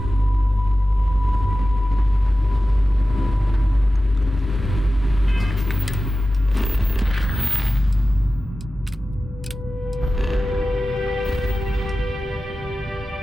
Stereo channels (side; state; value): both; normal; correlation 0.94